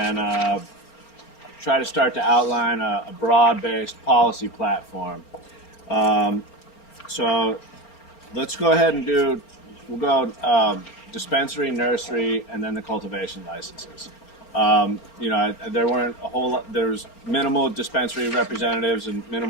try to start to outline a broad-based policy platform. So let's go ahead and we'll go dispensary, nursery, and then the cultivation licenses. There weren't a whole lot, there's minimal dispensary representatives and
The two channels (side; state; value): right; late; 4.4 ms